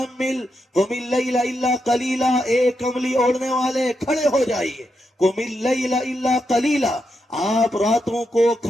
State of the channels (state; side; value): normal; both; correlation 0.84